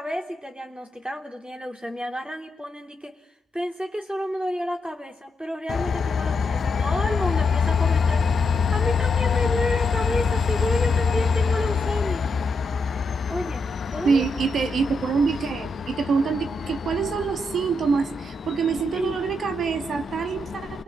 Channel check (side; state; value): both; normal; correlation 0.81